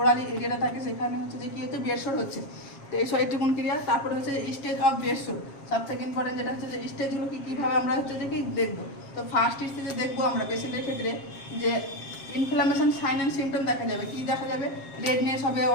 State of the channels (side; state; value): right; late; 7.4 ms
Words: এরিয়াটা থাকে সেখানে হচ্ছে যে কি হচ্ছে বেড সোর হচ্ছে। তো এই এটুকুন ক্রিয়া। তারপরে হচ্ছে যে স্টেজ অফ বেড সোর, সব থেকে ইম্পর্টেন্ট যেটা হচ্ছে যে স্টেজগুলো কীভাবে আমরা হচ্ছে যে কি দেখবো। তো ফার্স্ট স্টেজে দেখবো আমরা পেশেন্টের ক্ষেত্রে যে ইনফ্লামেশন সাইন অ্যান্ড সিমটম দেখা যাবে। কি দেখা যাবে, রেডনেস হবে,